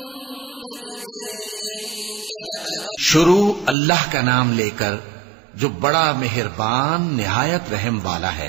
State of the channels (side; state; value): left; drops out; at 3.8 s